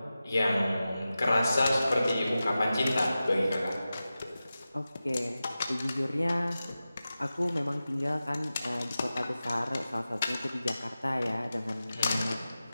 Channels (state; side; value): inverted; both; correlation -0.94